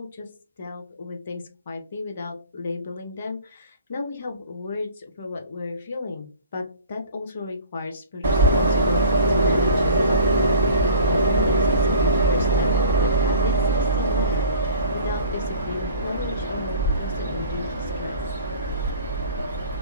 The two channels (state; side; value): inverted; both; correlation -0.45